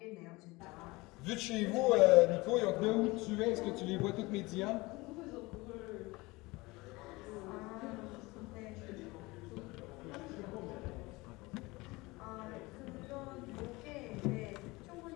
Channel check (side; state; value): right; quieter; 22.6 dB